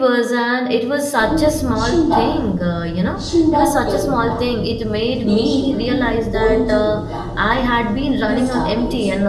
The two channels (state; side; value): identical; both; correlation 1.00